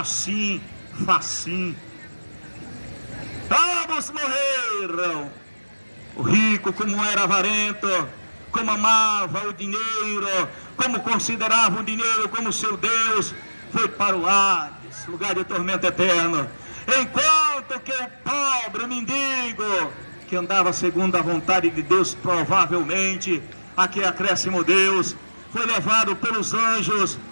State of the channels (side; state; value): both; inverted; correlation -1.00